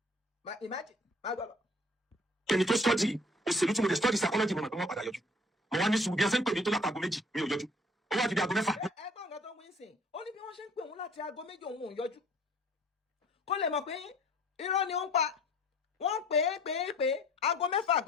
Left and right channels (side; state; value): both; normal; correlation 0.53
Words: Imagine máa gbọ́ lọ. Ẹni tó study òṣèlú tí mo dẹ̀ study psychology mo mọ̀ pé wọ́n padà yọjú mo wá ní sùúrù bí ẹ ṣe ń pè mí tó látago méjì mi ò yọjú ó wá di bí aago 6. ẹgbọ́n nǹkan tó ń wí sìn ó ní bí wọ́n ṣe ń pè òun láti aago 2 òun ò yọjú kó lè mọ̀ pé irọ́ ni ó ń pa wọ́n pè é aago 6